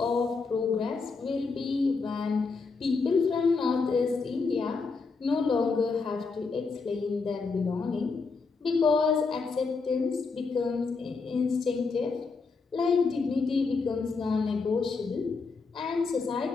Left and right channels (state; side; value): quieter; right; 4.5 dB